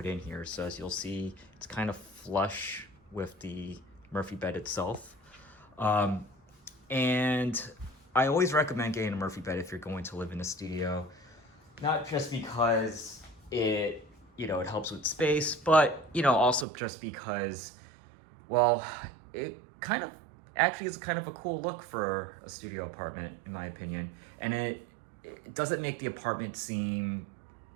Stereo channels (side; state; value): left; drops out; at 16.7 s